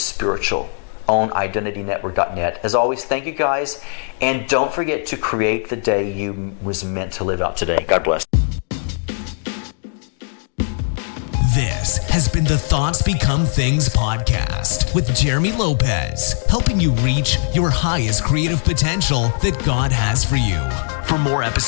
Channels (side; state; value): right; silent; 59 dB below the other